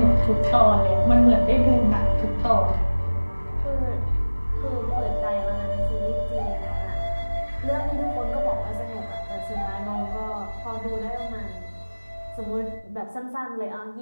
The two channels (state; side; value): inverted; both; correlation -1.00